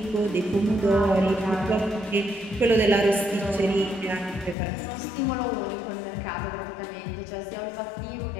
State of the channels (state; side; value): drops out; right; at 4.5 s